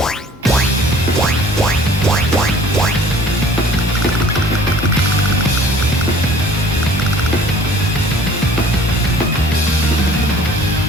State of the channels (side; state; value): both; normal; correlation 0.52